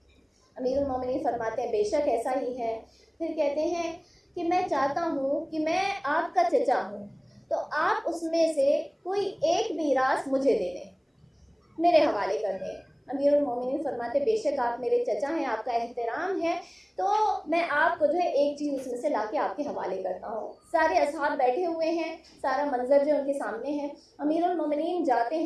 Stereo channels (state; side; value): identical; both; correlation 1.00